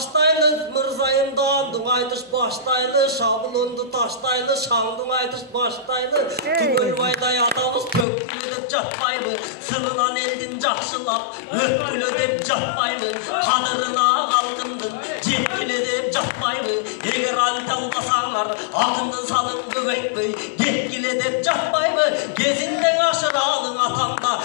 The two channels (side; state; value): right; drops out; at 8.1 s